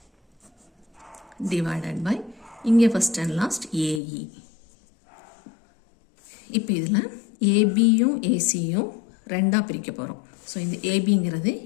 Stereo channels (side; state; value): right; drops out; at 4.0 s